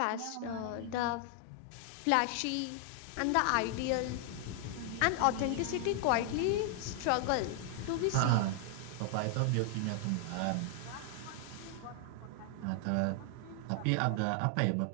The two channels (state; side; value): different; both; correlation 0.00